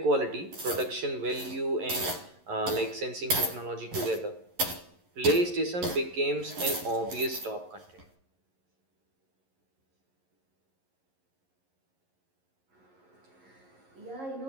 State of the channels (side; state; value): left; late; 11 ms